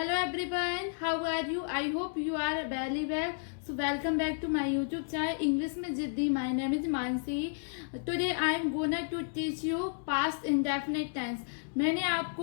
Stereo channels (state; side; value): silent; right; digital silence